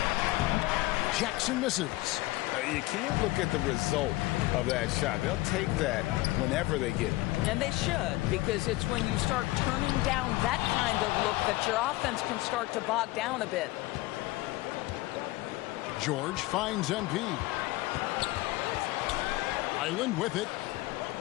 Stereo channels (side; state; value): right; quieter; 19.6 dB